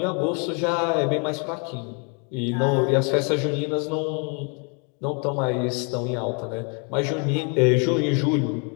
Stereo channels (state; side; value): quieter; right; 36.6 dB